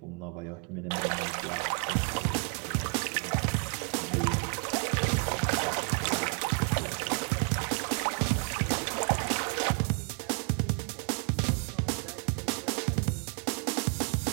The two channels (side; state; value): left; quieter; 38.1 dB